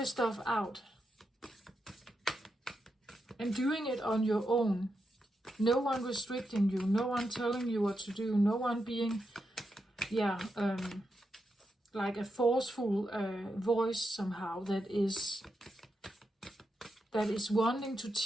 stuff out. And doing it on your own. No one restricting you. No one telling you what to do. No one being, like a forceful voice somehow that is wanting to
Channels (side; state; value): both; normal; correlation 0.86